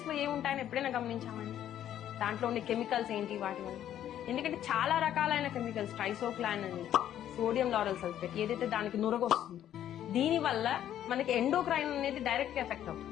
లో ఏముంటాయని ఎప్పుడైనా గమనించామండి? దాంట్లో ఉండే కెమికల్స్ ఏంటి వాటి వల్ల? ఎందుకంటే చాలా రకాలైన కెమికల్స్, ట్రైసోక్లాన్ అని, సోడియం లారల్ సల్ఫేట్, ఏదైతే దానికి నురగొస్తుందో దీని వల్ల మనకి ఎండోక్రైన్ అనేది డైరెక్ట్ గా ఎఫెక్ట్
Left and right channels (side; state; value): right; quieter; 11.1 dB